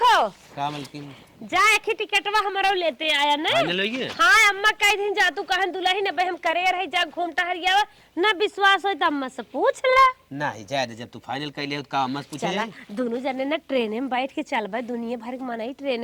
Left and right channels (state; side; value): identical; both; correlation 1.00